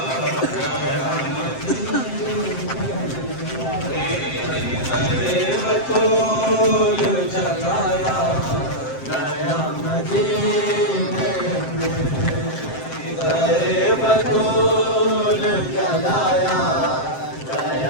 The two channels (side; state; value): right; late; 7.6 ms